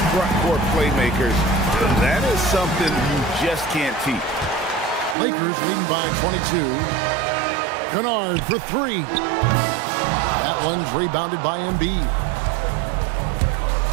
front court playmakers. That is something you just can't teach. Lakers leading by 22. Kennard for 3. That one's rebounded by Embiid.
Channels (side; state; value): left; drops out; at 5.2 s